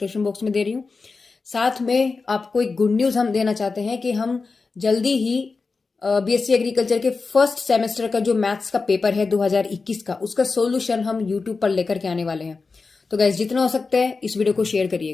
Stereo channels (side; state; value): right; quieter; 4.3 dB